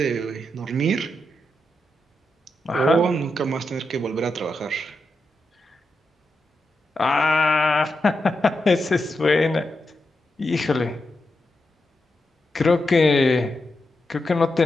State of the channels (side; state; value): both; normal; correlation 0.86